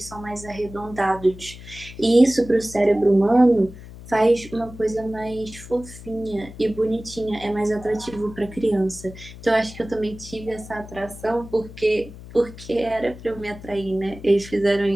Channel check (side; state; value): left; noise; hum, 16 dB below the sound